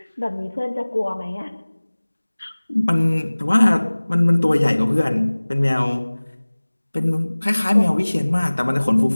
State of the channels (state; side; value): inverted; both; correlation -1.00